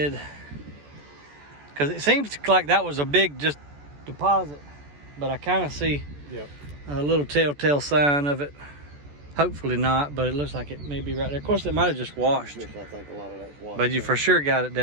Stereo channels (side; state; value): left; late; 14 ms